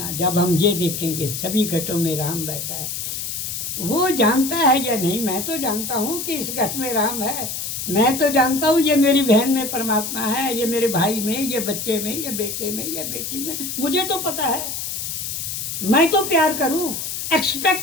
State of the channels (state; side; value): noise; left; hiss, 4 dB below the sound